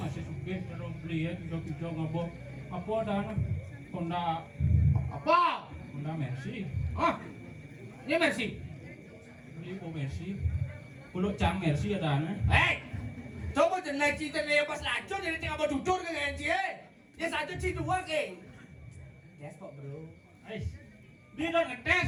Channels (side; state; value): both; identical; correlation 1.00